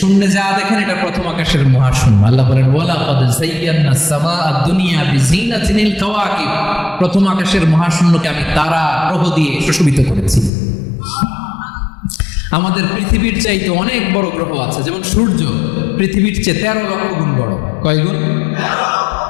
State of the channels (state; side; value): drops out; right; at 10.5 s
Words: যা দেখেন এটা প্রথম আকাশের মহাশূন্য। আল্লাহ বলেন ওয়ালাকাদ যায়্যানাস সামাআদ দুনিয়া বিজিনাতিল কাওয়াকিব। প্রথম আকাশের মহাশূন্যকে আমি তারা গ্রহ দিয়ে সুশোভিত করেছি। আমাদের পৃথিবীর চাইতে অনেক বড় গ্রহ আছে, যেমন সূর্য পৃথিবীর চেয়ে 13 লক্ষ গুণ বড়। কয় গুণ?